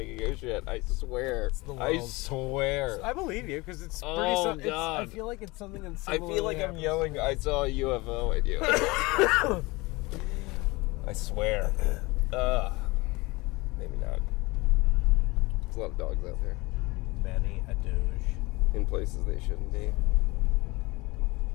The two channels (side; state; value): right; quieter; 23.3 dB